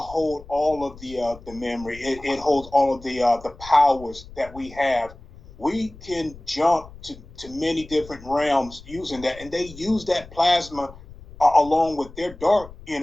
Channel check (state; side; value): noise; left; rumble, 19 dB below the sound